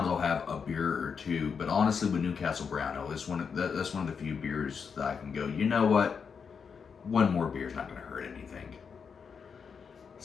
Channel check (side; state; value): right; quieter; 6.2 dB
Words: I'll have a beer or two. But honestly, with Newcastle Brown Ale, that's one of the few beers that I can go, you know what? One more beer is not going to hurt anything.